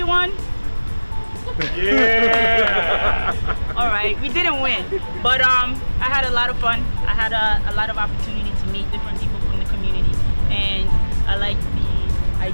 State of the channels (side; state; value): both; inverted; correlation -1.00